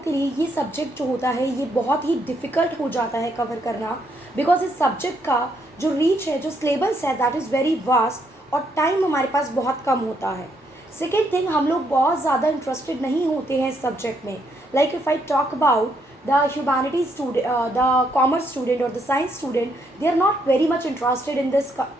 के लिए ये subject जो होता है ये बहुत ही डिफ़िकल्ट हो जाता है कवर करना, बिकॉज इस सब्जेक्ट का जो रीच है, जो सिलेबस है, दैट इज़ वेरी वास्ट और टाइम हमारे पास बहुत कम होता है. सेकेंड थिंग, हम लोग बहुत ज़्यादा इंटरेस्टेड नहीं होते हैं इस सब्जेक्ट में. Like if I talk about the humanities student, the commerce student or the science student, they are not very much interested in this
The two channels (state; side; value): normal; both; correlation 0.74